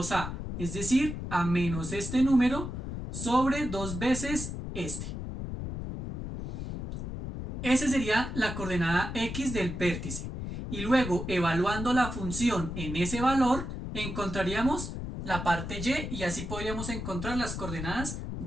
es decir, a menos este número sobre 2 veces este. Esa sería la coordenada x del vértice. Y luego, evaluando la función en ese valor, encontraríamos la parte y así podríamos encontrar las coordenadas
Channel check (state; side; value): noise; left; rumble, 6 dB below the sound